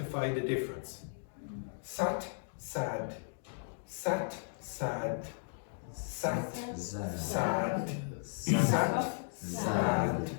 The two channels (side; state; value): right; silent; digital silence